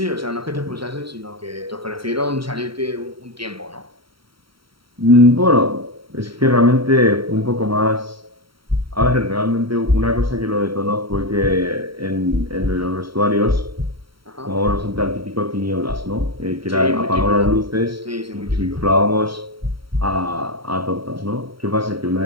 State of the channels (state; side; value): late; left; 0.74 ms